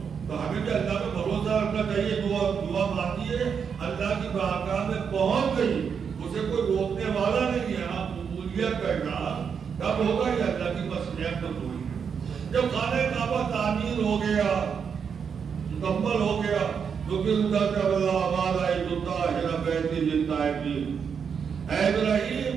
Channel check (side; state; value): left; quieter; 6.7 dB